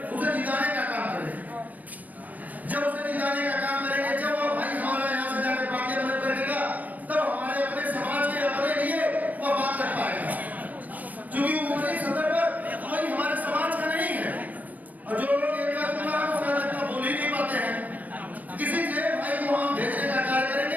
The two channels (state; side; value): late; left; 0.079 ms